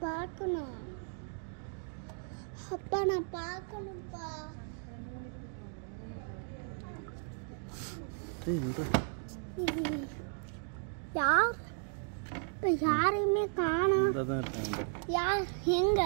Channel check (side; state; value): left; silent; 54 dB below the other